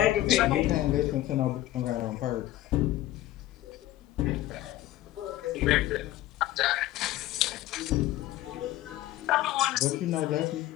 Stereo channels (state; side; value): quieter; right; 14.8 dB